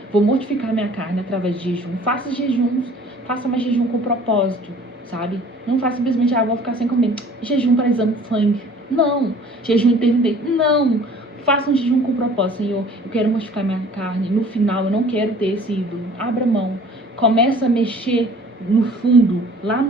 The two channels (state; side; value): normal; both; correlation 0.50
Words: Vou mortificar minha carne através de jejum. Faça jejuns. Faça mais jejum com propósito, sabe? Não faça simplesmente: vou ficar sem comer. Jejum para exame de sangue. Não. Jejum intermitente. Não. Faça um jejum com propósito. Senhor, eu quero mortificar minha carne. No final, eu não quero ter esse ídolo. Abra mão. Começa a mexer no fundo, lá